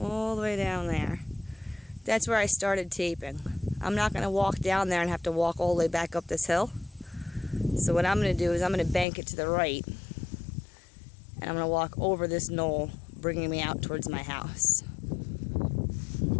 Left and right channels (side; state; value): right; drops out; at 9.1 s